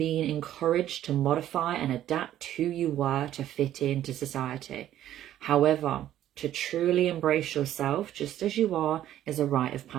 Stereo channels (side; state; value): left; quieter; 12.2 dB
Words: encouraged to modify and adapt who you were to fit into society. However, to truly embrace yourself just as you are is a rite of